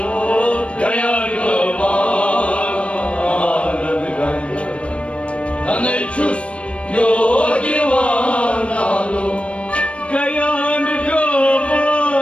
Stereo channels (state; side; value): late; right; 0.061 ms